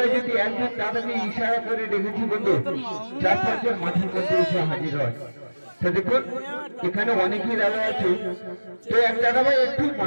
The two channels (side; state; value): both; inverted; correlation -1.00